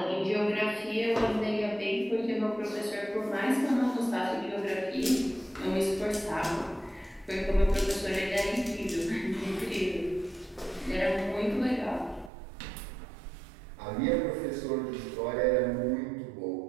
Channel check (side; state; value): left; drops out; at 12.3 s